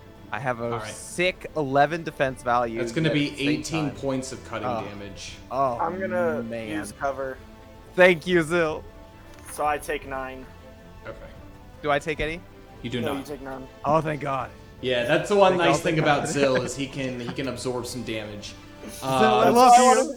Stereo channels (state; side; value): identical; both; correlation 1.00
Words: I have a Alright. sick 11 defense value. That's going to be at the same 18 time. points of cutting Oh. damage. Oh, I'm gonna man. use cover, Thank you, Zil. so I take 9. Okay. Do I take any? You do No, not. you take none. Oh, thank God. Yeah, that's the one Think nice I'll thing take about that. Zill is he can absorb some damage. I That's love why I you. wanted to